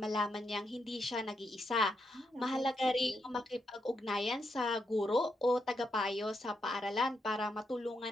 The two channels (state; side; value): normal; both; correlation 0.81